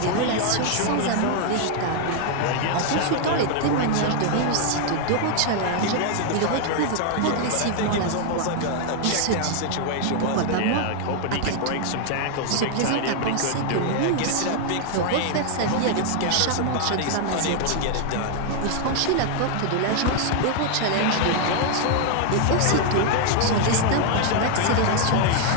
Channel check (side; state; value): both; different; correlation 0.00